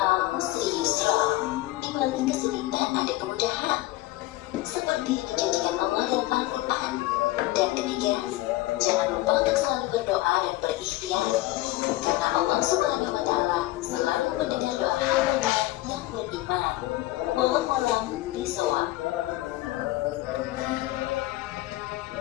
usri yusra, di balik kesulitan ada kemudahan, seperti yang dijanjikan Allah dalam Al-Quran. Dan ketiga, jangan lupa untuk selalu berdoa dan berikhtiar, karena Allah Subhanahu wa Ta'ala selalu mendengar doa hamba yang beriman. Wallahu a'lam bishawab.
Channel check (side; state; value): right; quieter; 17.6 dB